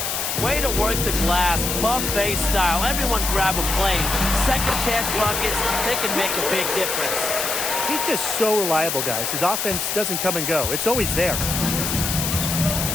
Way to work the glass, buffet style. Everyone grab a plane. Second chance buckets, they can make a big difference. He's just so reliable, guys. His offense doesn't come and go. It's always there.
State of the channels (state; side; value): noise; left; hiss, 1 dB below the sound